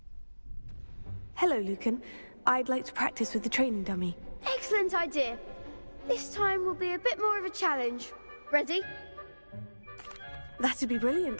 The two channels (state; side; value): inverted; both; correlation -1.00